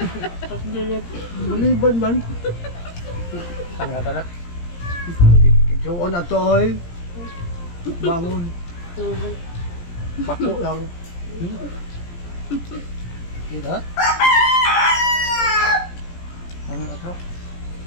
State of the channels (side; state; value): right; late; 17 ms